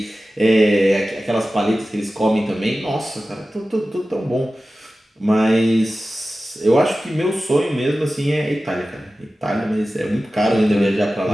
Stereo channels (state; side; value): normal; both; correlation 0.95